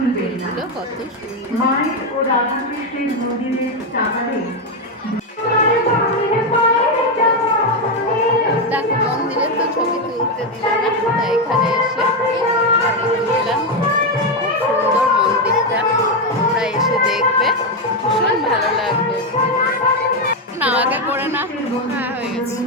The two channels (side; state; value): both; normal; correlation 0.07